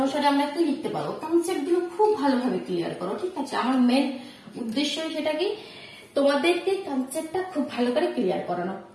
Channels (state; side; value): identical; both; correlation 1.00